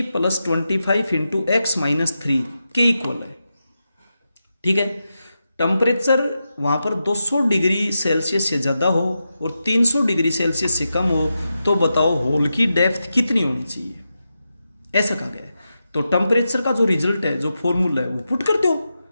+ 25 इंटू x - 3 के इक्वल है। ठीक है, टेम्परेचर वहाँ पर 200 डिग्री सेल्सियस से ज़्यादा हो और 300 डिग्री सेल्सियस से कम हो, तो बताओ होल की डेप्थ कितनी होनी चाहिए, ऐसा कहा गया है। तो टेम्परेचर का जो रिजल्ट है, जो फॉर्मूला है वो पुट कर दो।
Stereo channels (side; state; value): both; inverted; correlation -0.89